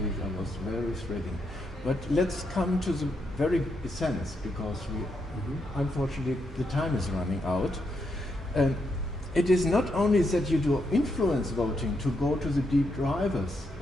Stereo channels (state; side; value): normal; both; correlation 0.80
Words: week, I was very thrilling. But let's come to the very essence, because we, unfortunately, the time is running out. It is not only that you do influence voting to go to the deep drivers,